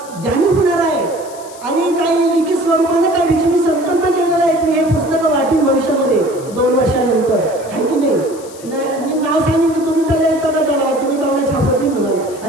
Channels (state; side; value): noise; left; hiss, 19 dB below the sound